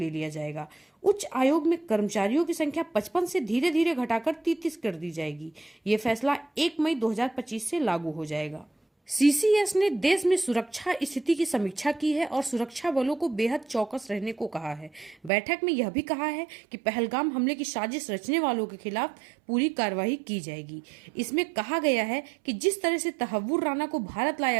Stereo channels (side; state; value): left; drops out; at 15.3 s